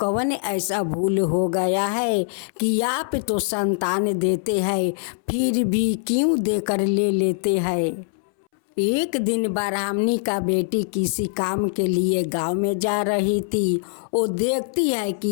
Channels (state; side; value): silent; right; 64 dB below the other